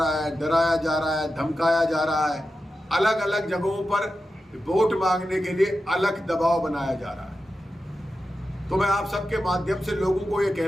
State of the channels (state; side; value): normal; both; correlation 0.91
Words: है, डराया जा रहा है, धमकाया जा रहा है, अलग अलग जगहों पर वोट मांगने के लिए अलग दबाव बनाया जा रहा है। तो मैं आप सबके माध्यम से लोगों को ये